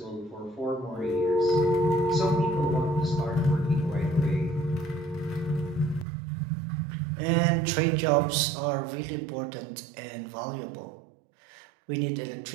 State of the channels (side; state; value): left; drops out; at 6.1 s